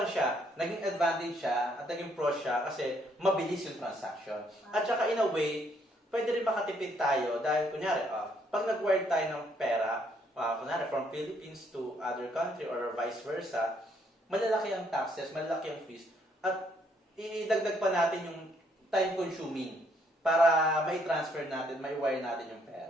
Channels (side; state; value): both; normal; correlation 0.69